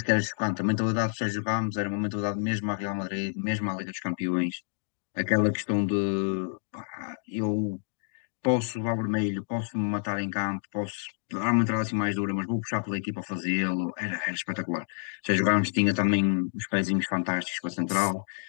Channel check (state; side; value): silent; right; 59 dB below the other